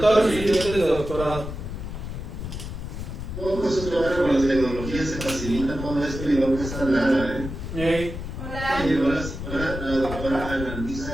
los estudiantes de doctorado. Todo eso que ahora con las tecnologías se facilita todo esto y no cuesta nada, ¿eh? Hola. Hola, la doctora Ana Luisa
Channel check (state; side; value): noise; left; rumble, 7 dB below the sound